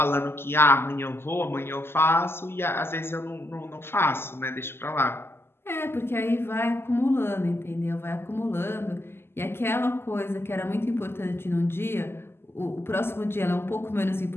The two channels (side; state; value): right; late; 0.12 ms